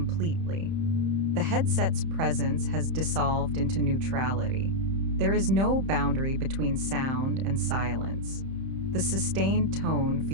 The headset's presence has dissolved into neutrality. There is no boundary between sound and silence. The sustained tone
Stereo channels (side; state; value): left; late; 31 ms